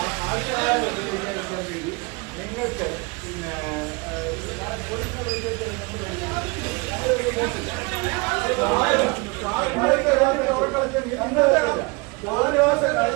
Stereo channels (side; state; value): left; quieter; 27.9 dB